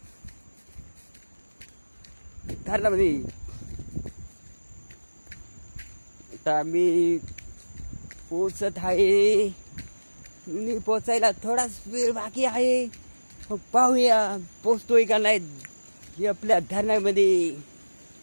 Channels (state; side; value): inverted; both; correlation -1.00